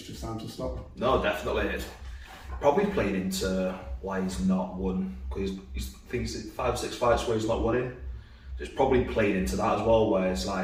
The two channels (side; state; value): both; identical; correlation 1.00